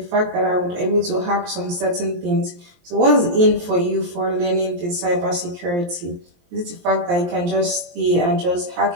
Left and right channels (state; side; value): late; left; 23 ms